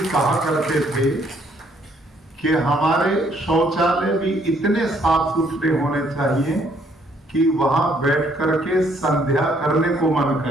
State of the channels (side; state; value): both; normal; correlation 0.67